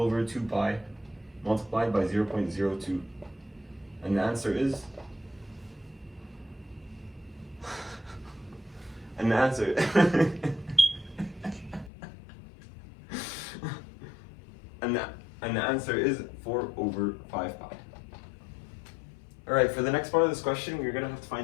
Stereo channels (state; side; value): drops out; right; at 11.9 s